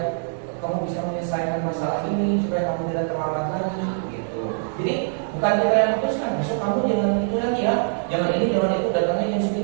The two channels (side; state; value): left; silent; 62 dB below the other